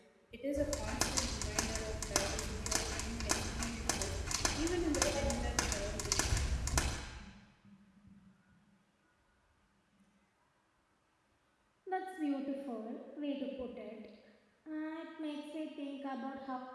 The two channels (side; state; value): both; identical; correlation 1.00